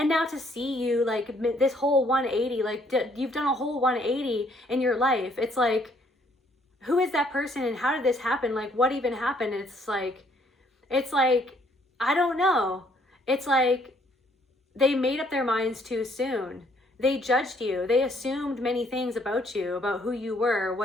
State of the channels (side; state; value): both; normal; correlation 0.66